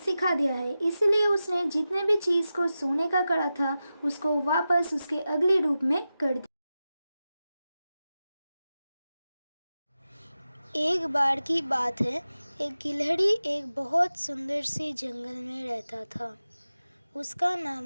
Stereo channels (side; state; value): both; inverted; correlation -0.93